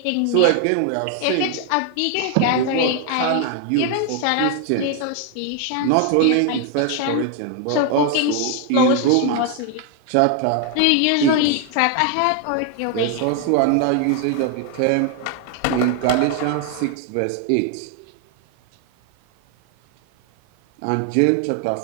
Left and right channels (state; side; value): different; both; correlation 0.00